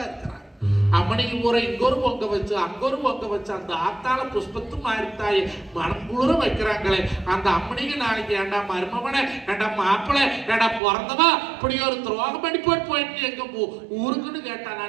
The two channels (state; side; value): drops out; left; at 10.8 s